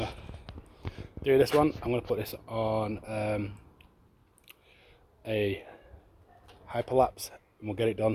do this one. I'm going to put this on a hyperlapse, and we'll get it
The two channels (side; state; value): both; identical; correlation 1.00